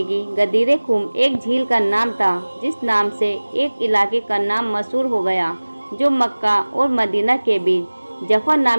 गदीर खुम एक झील का नाम था जिस नाम से एक इलाके का नाम मशहूर हो गया, जो मक्का और मदीना के बीच जफा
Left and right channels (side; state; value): both; inverted; correlation -1.00